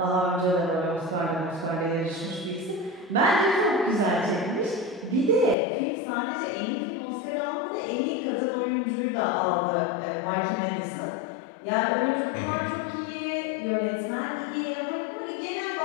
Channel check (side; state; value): right; drops out; at 5.6 s